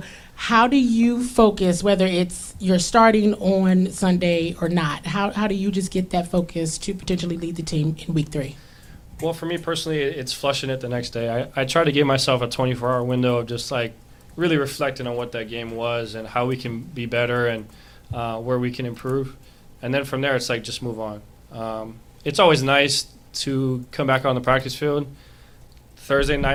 how do you focus, whether it's you're starting on Sunday or not? How do you just get that focus to potentially lead the team in week 3? Well, for me personally, it's flushing it the next day. I try to give myself a 24-hour window of just like really reflecting on what that game was and how we can be better and where we can improve. And then from there, it's like just move on. It's always nice to come back on the practice field. Thursday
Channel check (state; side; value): identical; both; correlation 1.00